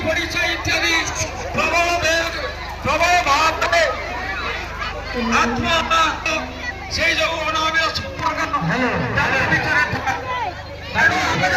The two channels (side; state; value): both; identical; correlation 1.00